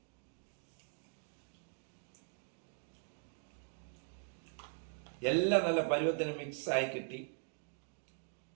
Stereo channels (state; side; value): silent; left; digital silence